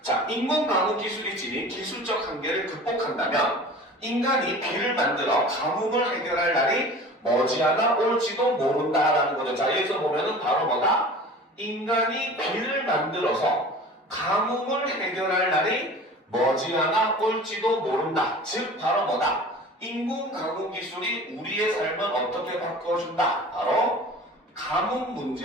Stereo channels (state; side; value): normal; both; correlation 0.40